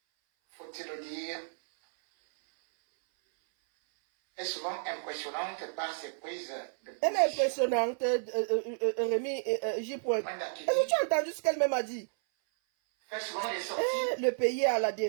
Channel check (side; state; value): left; silent; 57 dB below the other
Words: faut-il le dire, est souvent impressionnante par ses prises de position. Elle est impressionnante, Rémi J. Est-ce que tu as entendu ce qu'elle-même a dit? Fait souvent les sorties. Le pays à la